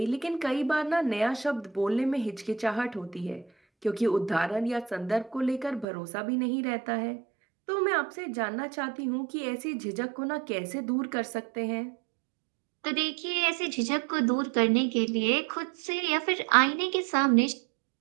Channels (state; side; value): drops out; left; at 5.9 s